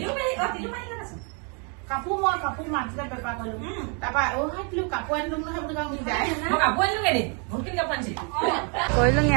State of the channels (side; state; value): left; quieter; 37.0 dB